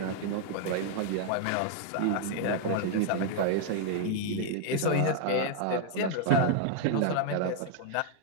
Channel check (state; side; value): different; both; correlation 0.00